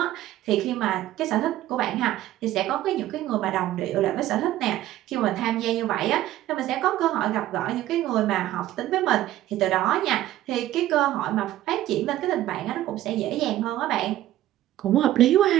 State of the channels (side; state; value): left; quieter; 14.1 dB